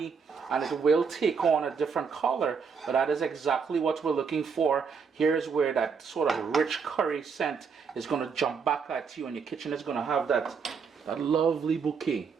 and it will take on a different color, but that is exactly what we're looking for. Here's where that sort of rich curry scent is going to jump back at you, and your kitchen is going to have that lovely bouquet.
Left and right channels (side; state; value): left; quieter; 5.9 dB